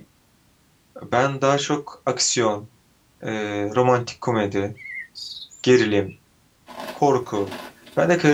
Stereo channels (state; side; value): identical; both; correlation 1.00